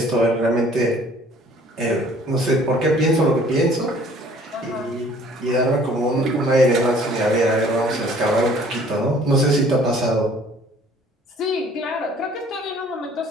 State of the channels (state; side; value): normal; both; correlation 0.55